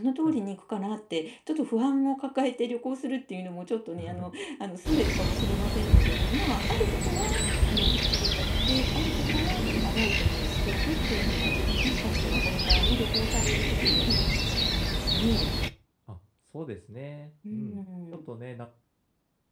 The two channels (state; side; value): identical; both; correlation 1.00